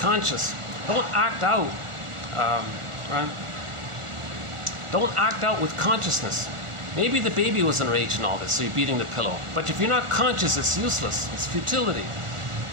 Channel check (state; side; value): late; left; 1.4 ms